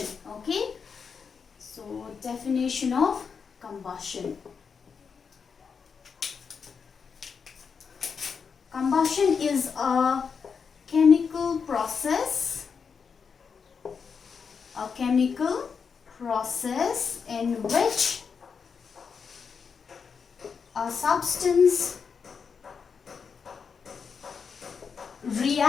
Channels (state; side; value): quieter; right; 6.0 dB